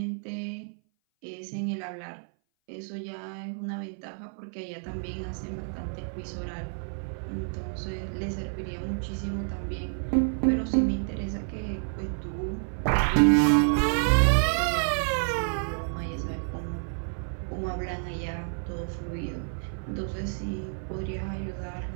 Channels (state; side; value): silent; left; 57 dB below the other